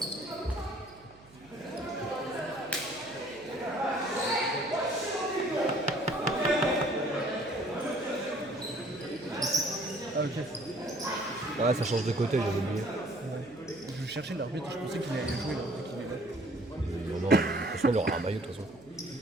ça. Ah ok. Ouais, ça change de côté, j'avais oublié. Je cherchais l'arbitre, je pensais qu'il allait jouer là, qu'il est là. Non, non, de toute façon, il aura un maillot, de toute façon.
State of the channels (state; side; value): noise; right; hum, 26 dB below the sound